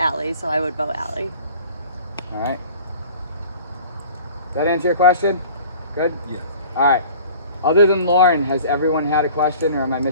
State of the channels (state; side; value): inverted; both; correlation -0.46